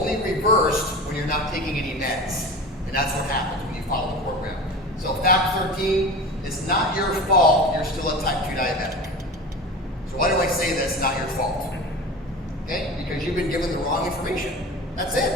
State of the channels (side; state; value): both; normal; correlation 0.32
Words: reversed when you're not taking any meds. And that's what happens when you follow the program. So fact 13 it's not your fault you're still a type 2 diabetic. So why do I say that's not your fault? Okay, because you've been given the wrong information. That's